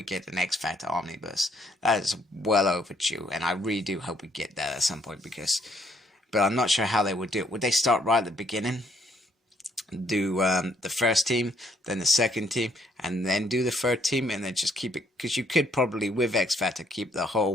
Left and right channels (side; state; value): both; normal; correlation 0.68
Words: get an XFactor omnibus. That is well overdue, and I really do hope we get that at some point, but I'm not sure how they would do it. Would they start right at the beginning, do the first team, then the second team, and then do the third team, and then just keep it? Because you could probably, with XFactor, keep the